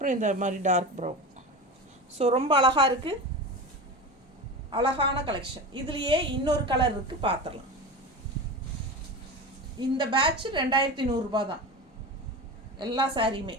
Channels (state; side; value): normal; both; correlation 0.27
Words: இந்த மாதிரி டார்க் ப்ரௌன். ஸோ ரொம்ப அழகாக இருக்குது, அழகான கலெக்ஷன். இதுலேயே இன்னொரு கலர் இருக்குது, பார்த்துடலாம். இந்த பேட்ச் 2100 தான் எல்லா சாரியுமே,